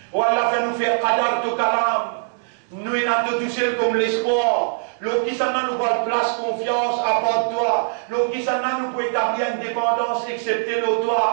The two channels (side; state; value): left; silent; digital silence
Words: Oh Allah, fais-nous faire qadar ton kalam. Nous, il a tout seul comme l'espoir. L'eau qui s'en a nous pas place confiance à part toi. L'eau qui s'en a nous peut établir une dépendance excepté l'eau